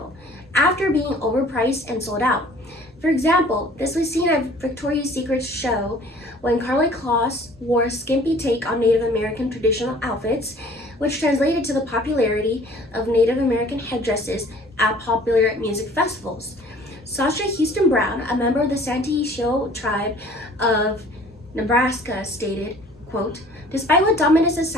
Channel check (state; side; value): normal; both; correlation 0.51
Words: after being overpriced and sold out. For example, this was seen at Victoria's Secret's show when Karlie Kloss wore a skimpy take on Native American traditional outfits, which translated to the popularity of Native American headdresses at popular music festivals. Sasha Houston Brown, a member of the Santee Sioux tribe of Nebraska, stated, quote, "Despite what dominant